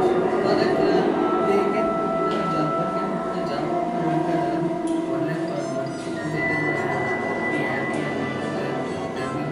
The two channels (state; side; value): identical; both; correlation 1.00